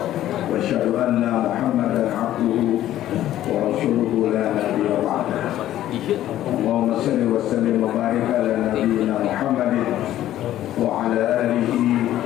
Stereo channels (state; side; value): quieter; right; 13.0 dB